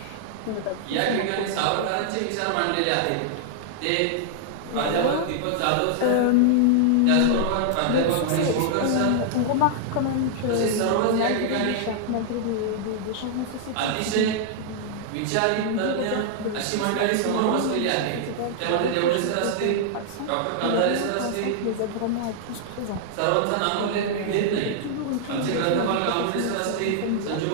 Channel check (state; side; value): different; both; correlation -0.01